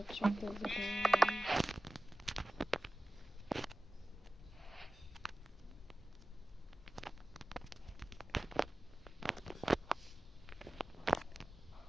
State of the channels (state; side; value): normal; both; correlation 0.96